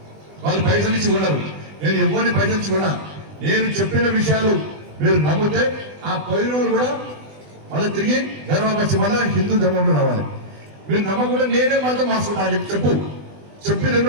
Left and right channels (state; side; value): late; left; 20 ms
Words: వాళ్ళు పైసలు ఇచ్చి కొన్నారు, నేను ఎవరిని పైసలు ఇచ్చి కొనా, నేను చెప్పిన విషయాలు మీరు నమ్మితే ఆ 10 రోజులు కూడా మళ్ళీ తిరిగి ధర్మపరిచి మళ్ళీ హిందూ ధర్మంలో రావాలి. మీరు నమ్మకుండా నేనే మాత్రం మార్చుకుంటా చెప్పి